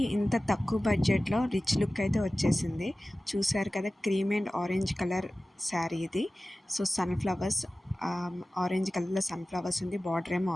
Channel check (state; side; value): normal; both; correlation 0.96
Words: ఇంత తక్కువ బడ్జెట్లో రిచ్ లుక్ అయితే వచ్చేసింది. చూసారు కదా, cream and orange colour sari ఇది. సో సన్ఫ్లవర్స్, ఆరెంజ్ కలర్లో సన్ఫ్లవర్స్ ఉంది, బార్డర్ ఏమో